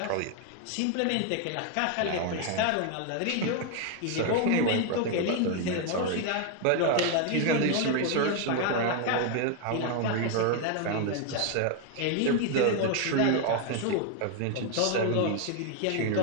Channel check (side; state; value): both; different; correlation 0.01